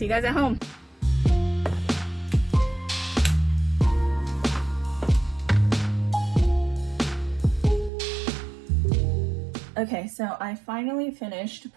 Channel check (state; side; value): drops out; left; at 7.9 s